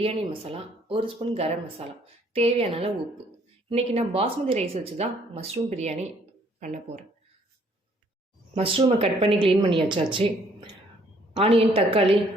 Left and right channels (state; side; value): normal; both; correlation 0.63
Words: மசாலா, 1 ஸ்பூன் கரம் மசாலா, தேவையான அளவு உப்பு. இன்றைக்கி நான் பாஸ்மதி ரைஸ் வச்சு தான் மஷ்ரூம் பிரியாணி பண்ண போகிறேன். மஷ்ரூமை கட் பண்ணி க்ளீன் பண்ணி வச்சாச்சு. ஆனியன், தக்காளி